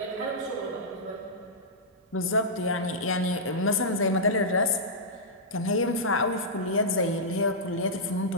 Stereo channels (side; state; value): both; normal; correlation -0.12